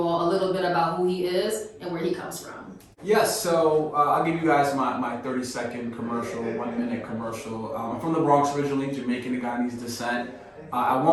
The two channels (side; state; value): both; identical; correlation 1.00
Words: all a little bit about who he is and where he comes from. Yes, so I'll give you guys my 30-second commercial, 1-minute commercial. I'm from the Bronx originally, Jamaican Ghanaian descent. At